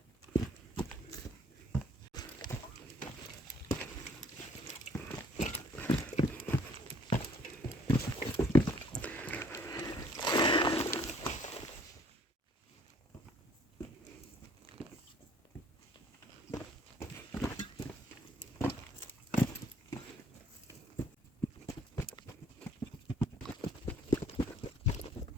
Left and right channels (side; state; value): both; normal; correlation 0.61